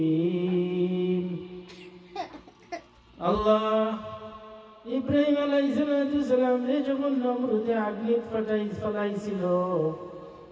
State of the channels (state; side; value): identical; both; correlation 1.00